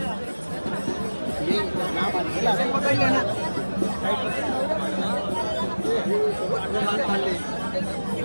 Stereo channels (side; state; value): both; inverted; correlation -1.00